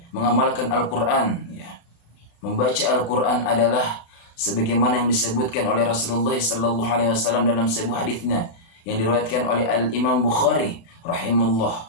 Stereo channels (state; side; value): late; right; 36 ms